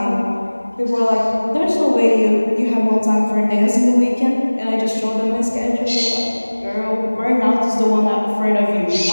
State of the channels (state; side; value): inverted; both; correlation -1.00